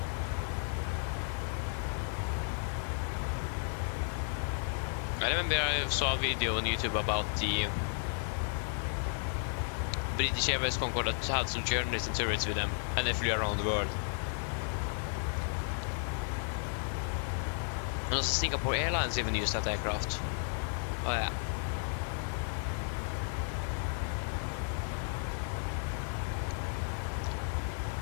I remember I saw a video on YouTube about the British Airways Concorde that had some journalists and tourists with them, and they flew around the world. And also Singapore Airlines even used that aircraft. Oh yeah.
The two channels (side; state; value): right; silent; 55 dB below the other